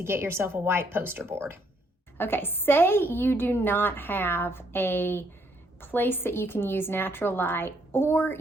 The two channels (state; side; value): normal; both; correlation 0.70